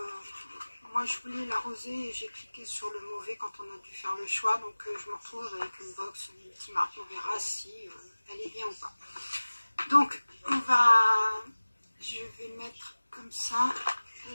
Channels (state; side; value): inverted; both; correlation -1.00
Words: moi, je voulais la rosée et j'ai cliqué sur le mauvais quand on a dû faire le choix. Donc, je me retrouve avec une box multimarque. On verra si elle est bien ou pas. Donc, je vais mettre comme ça.